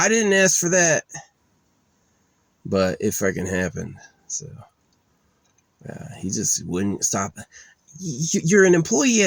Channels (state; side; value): identical; both; correlation 1.00